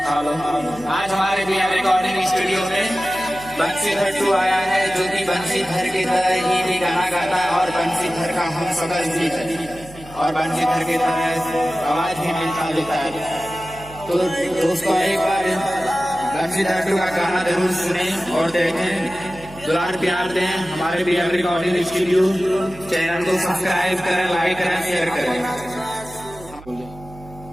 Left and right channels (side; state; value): right; noise; hum, 19 dB below the sound